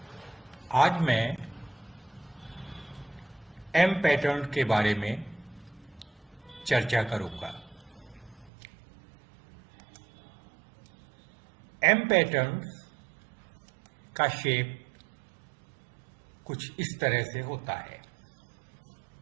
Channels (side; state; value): left; drops out; at 8.5 s